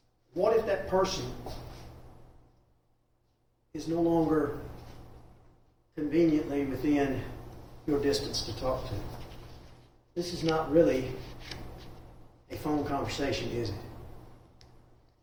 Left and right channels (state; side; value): identical; both; correlation 1.00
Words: What if that person is no longer conveniently within your distance to talk to? This is not really a phone conversation, is it?